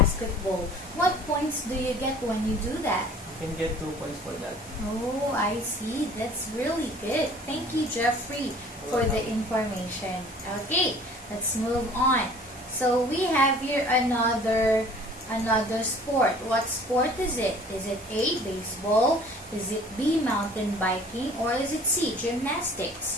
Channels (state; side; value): normal; both; correlation 0.49